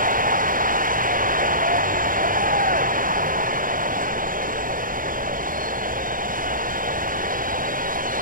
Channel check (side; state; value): left; late; 0.40 ms